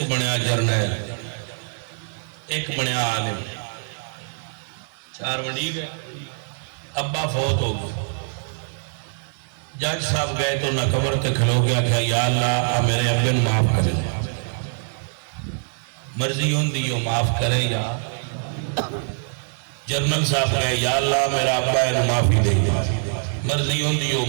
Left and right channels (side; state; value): left; silent; 63 dB below the other